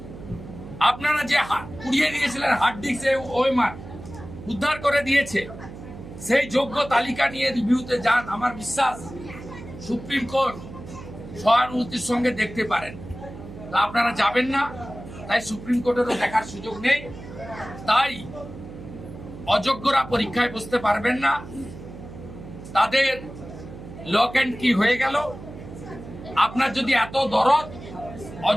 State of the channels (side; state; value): right; noise; hum, 14 dB below the sound